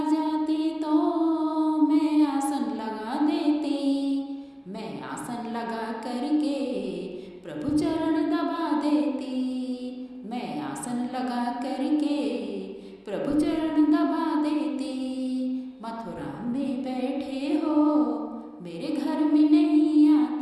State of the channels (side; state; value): both; identical; correlation 1.00